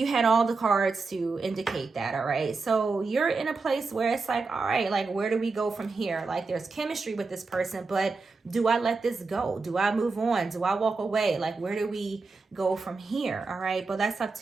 had all the cards to indicate that, all right? So you're in a place where it's like, all right, like, where do we go from here? Like, there's chemistry with this person, but do I let this go? Do I move on? Do I walk away? Like, where do we go from here, all right? But that's up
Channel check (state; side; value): quieter; left; 4.1 dB